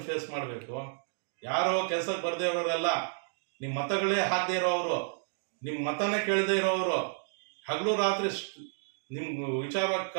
ಫೇಸ್ ಮಾಡಬೇಕು. ಯಾರೋ ಕೆಲ್ಸಕ್ಕೆ ಬರ್ದೇ ಇರೋರೆಲ್ಲ, ನಿಮ್ಮ ಮತಗಳೇ ಹಾಕದೇ ಇರೋರು, ನಿಮ್ಮ ಮತನೇ ಕೇಳದೇ ಇರೋರು, ಹಗಲು ರಾತ್ರಿ ನಿಮ್ ವಿಚಾರವಾಗಿ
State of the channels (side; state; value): left; silent; digital silence